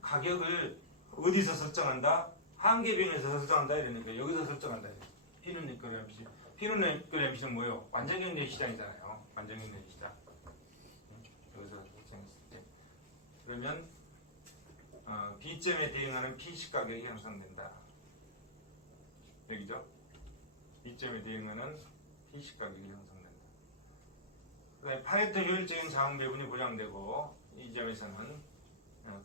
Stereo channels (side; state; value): both; normal; correlation -0.18